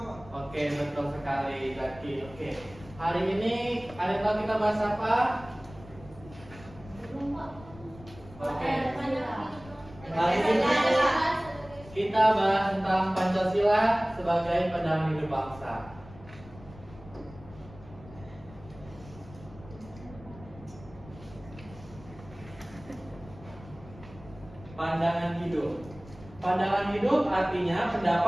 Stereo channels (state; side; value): noise; left; rumble, 19 dB below the sound